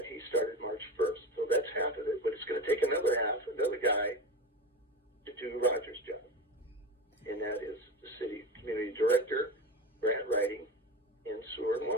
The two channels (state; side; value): normal; both; correlation 0.25